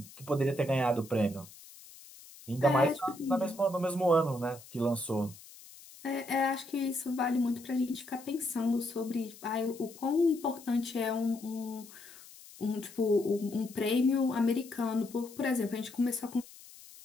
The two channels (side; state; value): left; noise; hiss, 19 dB below the sound